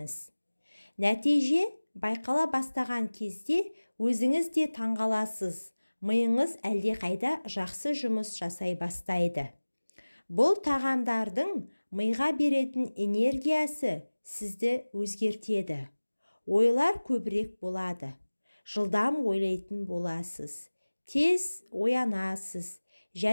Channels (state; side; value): inverted; both; correlation -1.00